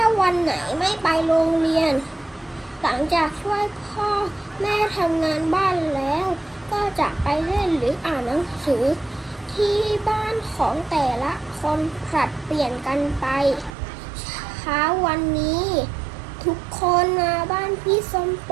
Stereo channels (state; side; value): drops out; left; at 13.7 s